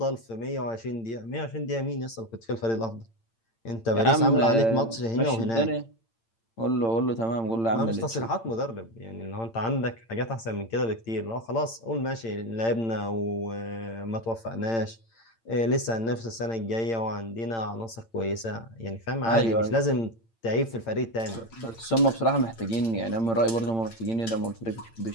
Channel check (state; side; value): late; right; 8.8 ms